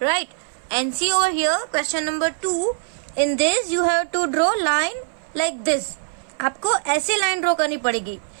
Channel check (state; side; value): silent; left; 60 dB below the other